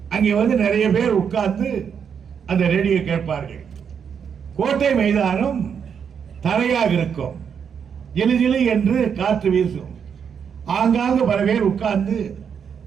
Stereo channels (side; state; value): left; quieter; 7.2 dB